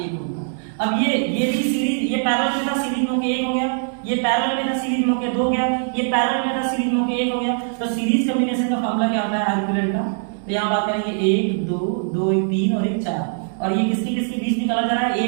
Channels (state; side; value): silent; left; 65 dB below the other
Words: ओम का। अब ये भी सीरीज, ये पैरेलल में था, सीरीज में होके 1 हो गया, ये पैरेलल में था, सीरीज में होके 2 हो गया, ये पैरेलल में था, सीरीज में होके 1 हो गया। तो सीरीज कॉम्बिनेशन का फार्मूला क्या होता है, R इक्विवेलेंट का। तो यहाँ बात करेंगे 1 2 2 3 और 1 4, और ये किसके बीच निकाला जा रहा है,